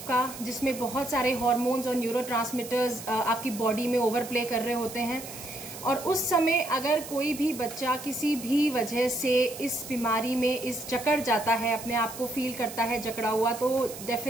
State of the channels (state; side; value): noise; right; hiss, 12 dB below the sound